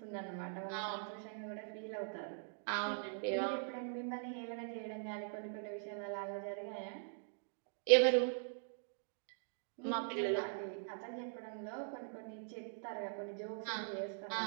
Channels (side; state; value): left; silent; digital silence